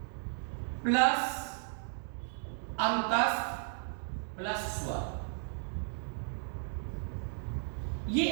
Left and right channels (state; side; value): silent; left; digital silence